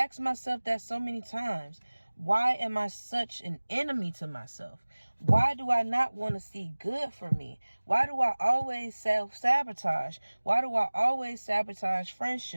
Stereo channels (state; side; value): inverted; both; correlation -1.00